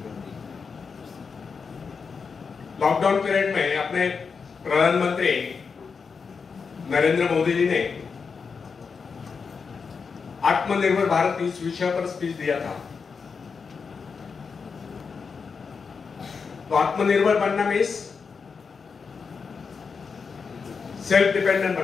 लॉकडाउन पीरियड में अपने प्रधानमंत्री नरेंद्र मोदी जी ने आत्मनिर्भर भारत इस विषय पर स्पीच दिया था. तो आत्मनिर्भर बनना मीन्स सेल्फ डिपेंडेंट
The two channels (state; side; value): quieter; right; 5.4 dB